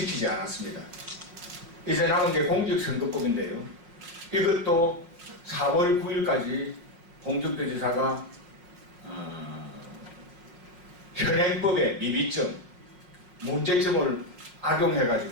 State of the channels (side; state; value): left; late; 5.5 ms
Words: 않았습니다. 이제 남은 게 공직선거법인데요. 이것도 4월 9일까지 홍준표 지사가 현행법의 미비점, 문제점을